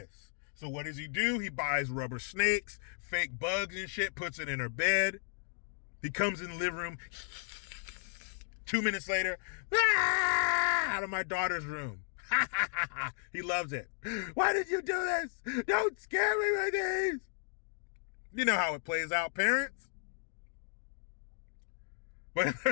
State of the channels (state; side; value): silent; right; digital silence